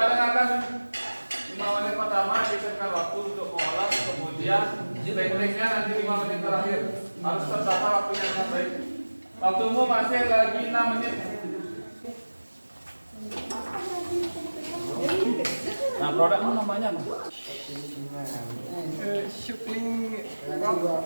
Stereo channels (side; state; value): both; inverted; correlation -1.00